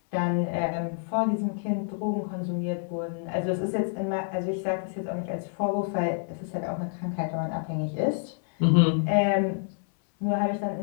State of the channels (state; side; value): silent; right; 59 dB below the other